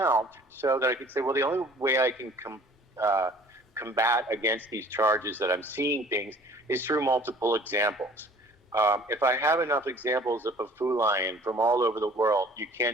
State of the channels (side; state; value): both; normal; correlation 0.51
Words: so that I could say, well, the only way I can combat against these charges that I'm seeing things is through multiple examples. If I have enough examples of a Fu lion from all over the world, you